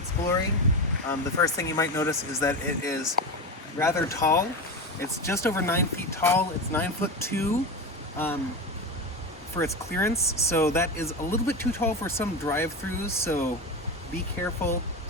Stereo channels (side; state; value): both; normal; correlation 0.21